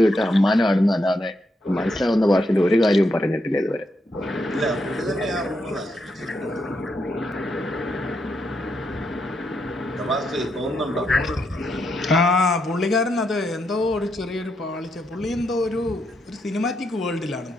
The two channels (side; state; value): both; normal; correlation 0.81